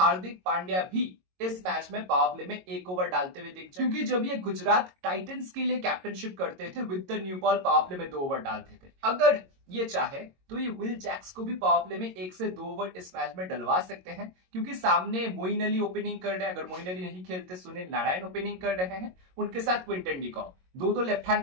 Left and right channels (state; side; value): late; left; 22 ms